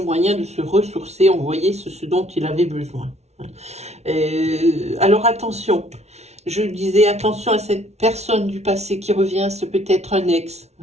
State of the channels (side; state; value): left; late; 0.31 ms